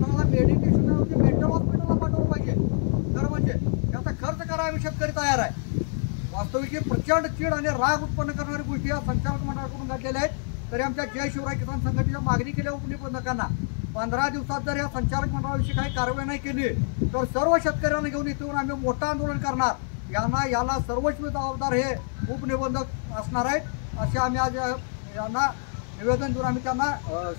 मेडिटेशनवरती मेंटल हॉस्पिटलला पाठवलं पाहिजे. तर म्हणजे त्याचा खर्च करायला आम्ही शेतकरी तयार आहे. वास्तविक प्रचंड चीड आणि राग उत्पन्न करणारी गोष्टी या संचालक मंडळाकडून घडलेल्या आहेत. तरी आमच्या जय शिवराय किसान संघटनेच्या मागणी केल्या उपनिबंधकांना 15 दिवसात जर या संचालक मंडळाविषयी काही कारवाई नाही केली तर सर्व शेतकऱ्यांना घेऊन इथून आम्ही मोठं आंदोलन करणार. याला सर्वस्वी जबाबदार हे उपनिबंधक असणार आहेत असे आम्ही आज यांना निवेदन देऊन आम्ही त्यांना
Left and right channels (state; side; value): silent; right; 55 dB below the other